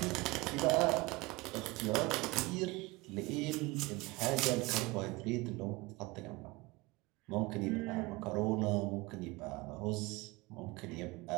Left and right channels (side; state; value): left; quieter; 23.0 dB